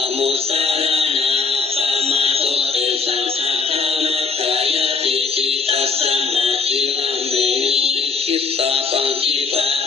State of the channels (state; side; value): quieter; right; 4.8 dB